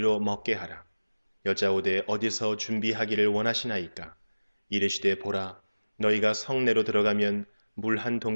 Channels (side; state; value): both; inverted; correlation -1.00